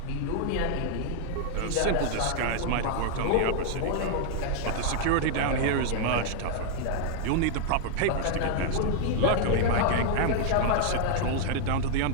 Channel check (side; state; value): both; different; correlation -0.01